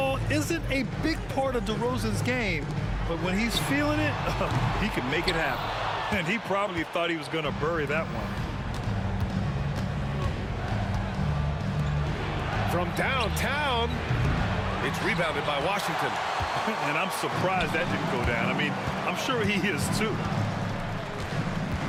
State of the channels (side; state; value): both; identical; correlation 1.00